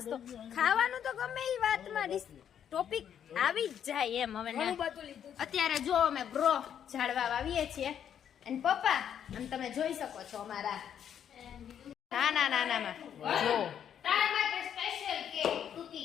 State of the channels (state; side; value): quieter; right; 9.1 dB